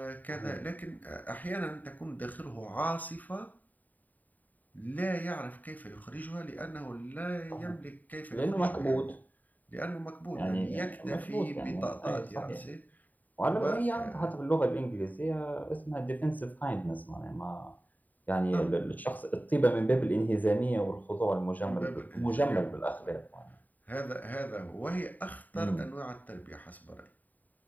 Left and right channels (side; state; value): right; late; 0.081 ms